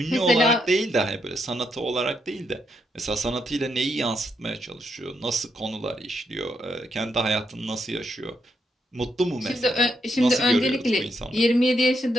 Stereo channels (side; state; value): both; normal; correlation 0.79